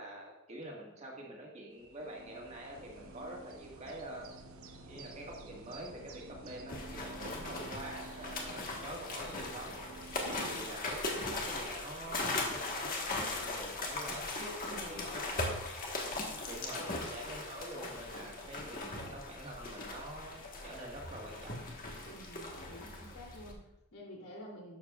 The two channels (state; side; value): normal; both; correlation 0.08